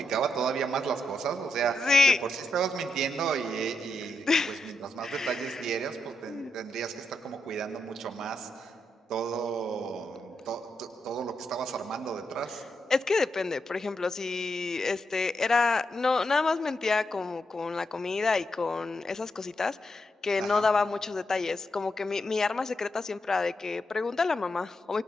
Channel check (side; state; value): both; normal; correlation 0.84